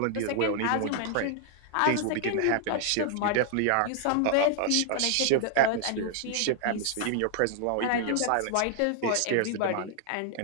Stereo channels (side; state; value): both; different; correlation 0.00